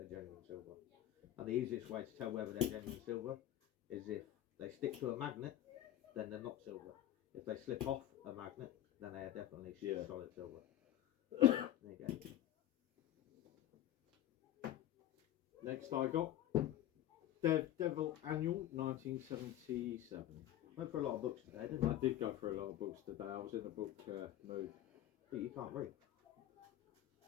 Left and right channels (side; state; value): right; quieter; 12.8 dB